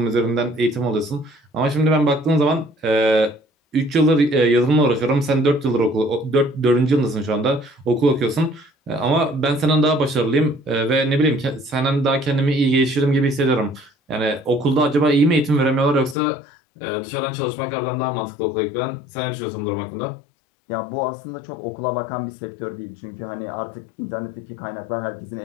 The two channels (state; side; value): drops out; right; at 16.2 s